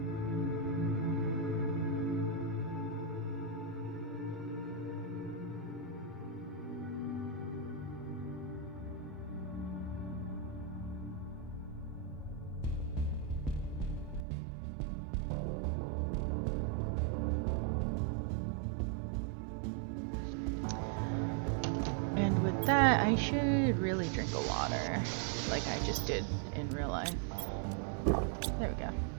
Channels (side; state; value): left; drops out; at 14.2 s